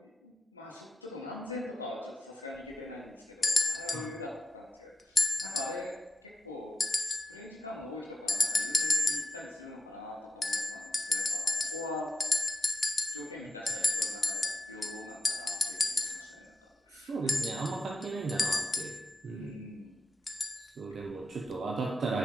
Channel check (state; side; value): normal; both; correlation 0.90